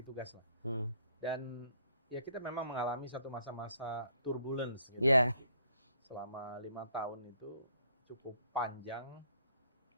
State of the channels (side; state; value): both; inverted; correlation -0.66